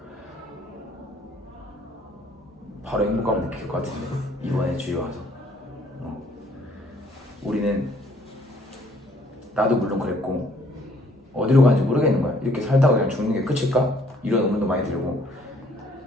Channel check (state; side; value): normal; both; correlation 0.62